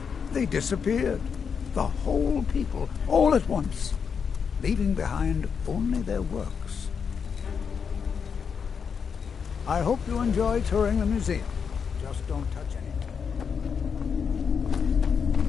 they disappeared. The whole people, all at once, leaving behind only their works. I hope you enjoy touring the museum. Just don't touch anything.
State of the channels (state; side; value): quieter; right; 6.5 dB